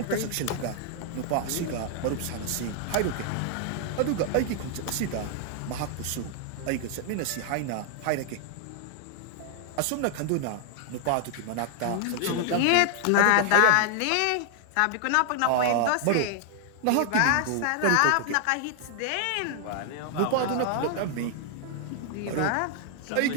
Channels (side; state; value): both; different; correlation 0.00